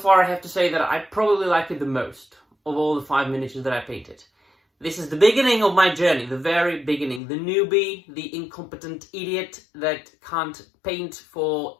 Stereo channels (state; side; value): drops out; right; at 7.2 s